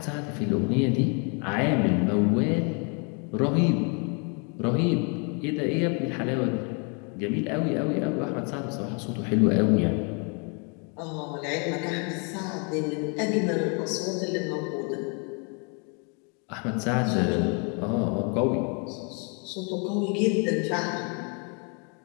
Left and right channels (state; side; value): quieter; right; 36.0 dB